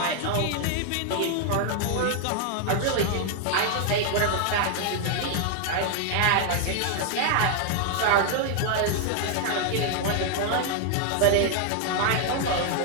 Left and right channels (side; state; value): both; different; correlation 0.00